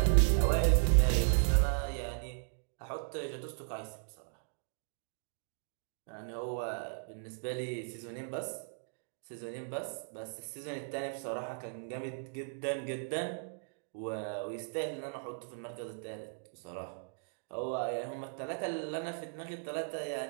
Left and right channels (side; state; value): left; silent; digital silence